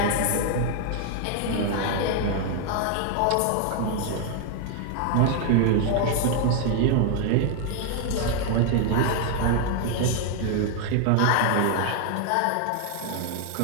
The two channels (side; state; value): both; different; correlation 0.00